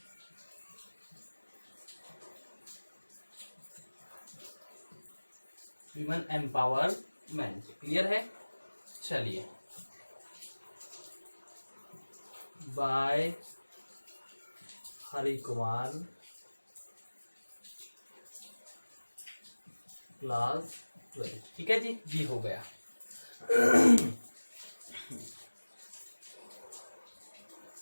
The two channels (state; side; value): inverted; both; correlation -1.00